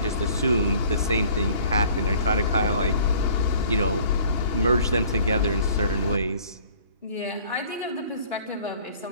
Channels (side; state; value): both; inverted; correlation -0.52